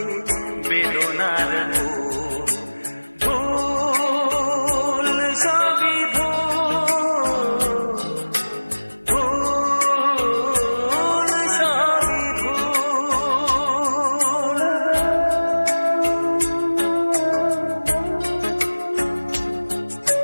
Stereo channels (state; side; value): inverted; both; correlation -1.00